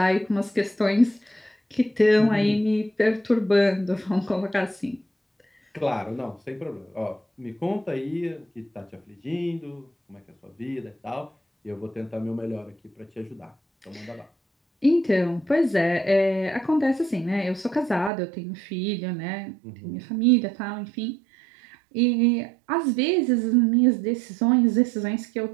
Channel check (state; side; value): drops out; left; at 18.1 s